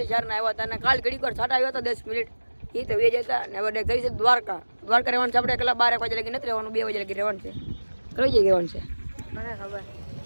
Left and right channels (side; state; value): both; inverted; correlation -1.00